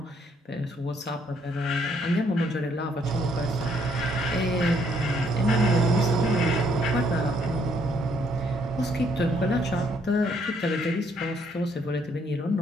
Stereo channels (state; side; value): normal; both; correlation 0.69